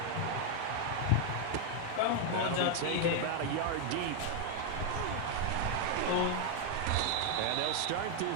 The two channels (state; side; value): different; both; correlation 0.00